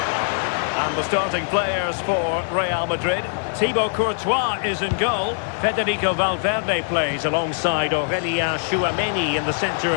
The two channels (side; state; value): right; silent; digital silence